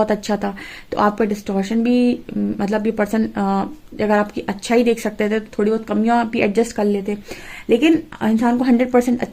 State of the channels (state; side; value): identical; both; correlation 1.00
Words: अच्छा था, तो आपका डिस्टॉर्शन भी, मतलब ये पर्सन अगर आपकी अच्छा ही देख सकते थे, तो थोड़ी बहुत कमियां भी एडजस्ट कर लेते। लेकिन इंसान को 100%